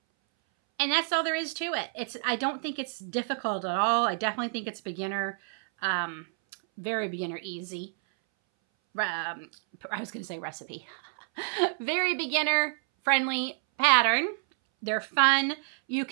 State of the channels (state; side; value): silent; left; 59 dB below the other